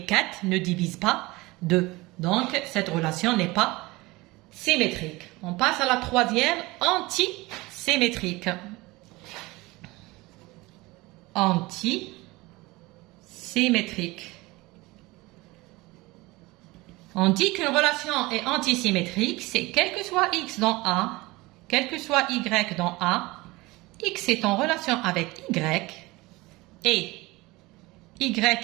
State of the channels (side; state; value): left; quieter; 21.7 dB